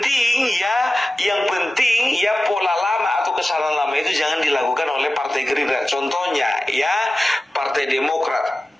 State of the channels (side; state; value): both; normal; correlation 0.95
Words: penting ya pola lama atau kesalahan lama itu jangan dilakukan oleh Partai Gerindra. Contohnya ya, Partai Demokrat